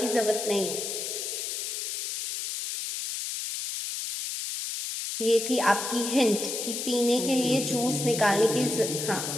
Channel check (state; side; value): noise; left; hiss, 4 dB below the sound